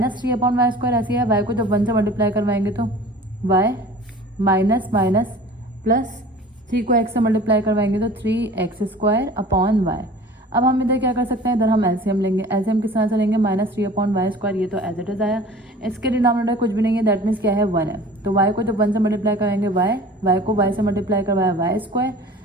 अपॉन वाई स्क्वायर ऐसी है, y को जब 1 से मल्टीप्लाई करवाएंगे तो y माइनस माइनस प्लस 3 को x से मल्टीप्लाई करवाएंगे तो 3x स्क्वायर अपॉन y। अब हम इधर क्या कर सकते हैं, इधर हम एलसीएम लेंगे, एलसीएम किस तरह से लेंगे, -3 अपॉन वाई स्क्वायर, ये तो एज इट इज आया, इसके डिनोमिनेटर कुछ भी नहीं है, दैट मीन्स क्या है, 1 है, तो y को जब 1 से मल्टीप्लाई कराएंगे y को y से मल्टीप्लाई करवाया वाई स्क्वायर,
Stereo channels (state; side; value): normal; both; correlation 0.43